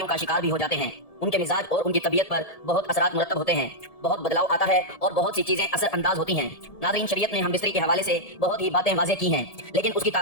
کا شکار بھی ہو جاتے ہیں۔ ان کے مزاج اور ان کی طبیعت پر بہت اثرات مرتب ہوتے ہیں، بہت بدلاؤ آتا ہے اور بہت سی چیزیں اثر انداز ہوتی ہیں۔ ناظرین، شریعت نے ہم بستری کے حوالے سے بہت ہی باتیں واضح کی ہیں، لیکن اس کی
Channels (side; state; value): right; late; 1.7 ms